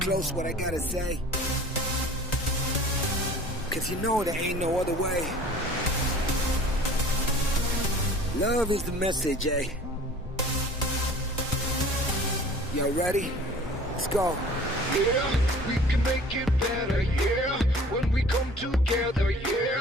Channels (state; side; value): normal; both; correlation 0.47